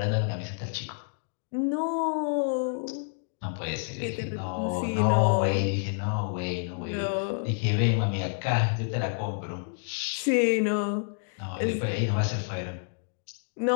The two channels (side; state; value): right; silent; digital silence